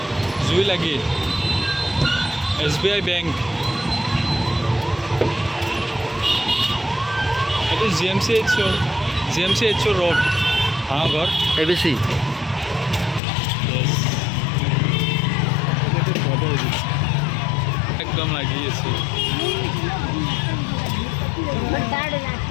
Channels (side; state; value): right; drops out; at 13.2 s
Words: জুই লাগি। SBI বেংক, এইটো GMCH ৰোড, ঘৰ ABC। একদম লাগি আছে,